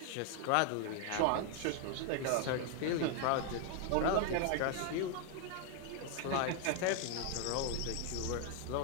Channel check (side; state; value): both; different; correlation 0.00